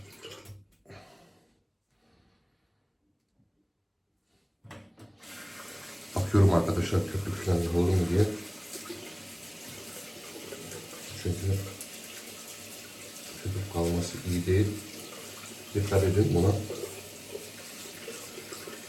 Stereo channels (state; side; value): identical; both; correlation 1.00